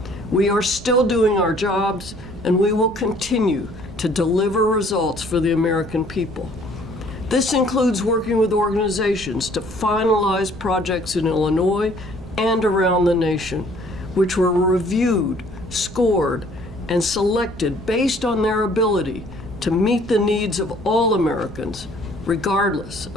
We are still doing our jobs, and we will continue to deliver results for the American people. This includes working with organizations to finalize projects in Illinois and around the nation, which were reviewed, scored, and selected based on their ability to meet the needs of all Americans, regardless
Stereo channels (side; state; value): both; normal; correlation 0.58